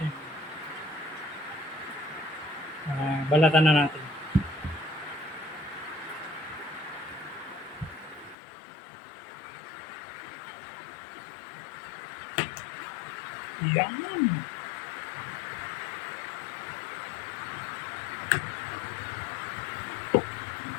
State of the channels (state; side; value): drops out; right; at 8.3 s